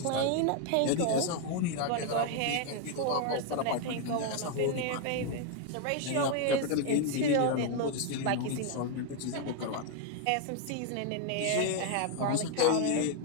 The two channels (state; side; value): different; both; correlation 0.01